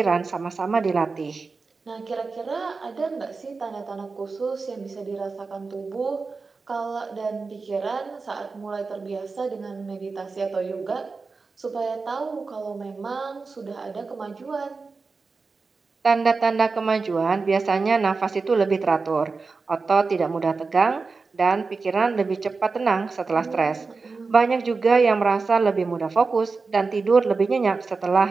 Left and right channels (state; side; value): quieter; left; 4.3 dB